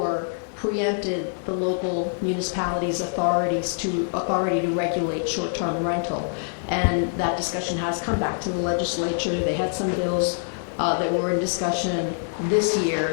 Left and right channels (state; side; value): silent; right; digital silence